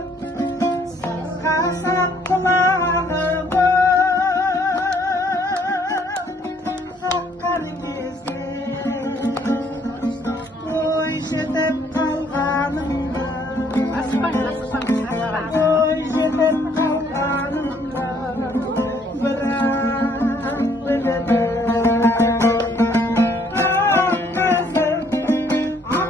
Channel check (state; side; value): normal; both; correlation 0.64